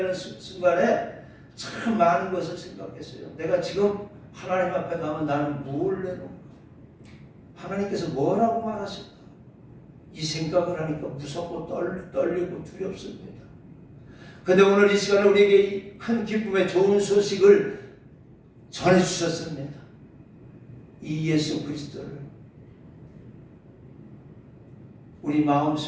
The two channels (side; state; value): both; identical; correlation 1.00